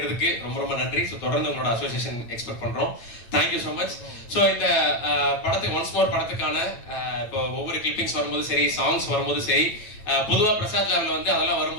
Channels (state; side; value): late; right; 9.0 ms